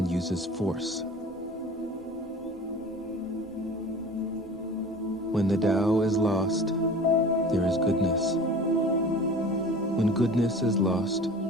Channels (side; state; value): both; normal; correlation 0.41